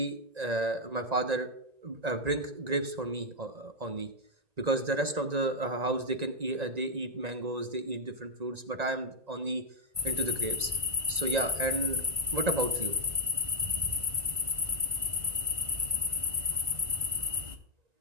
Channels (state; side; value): late; left; 1.9 ms